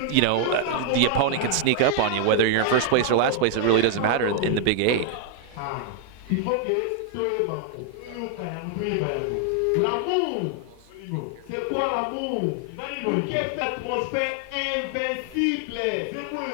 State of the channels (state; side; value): different; both; correlation 0.00